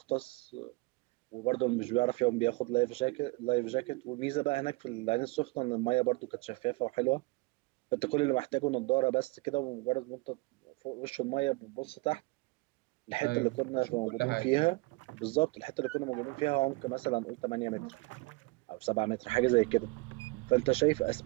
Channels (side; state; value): left; quieter; 24.3 dB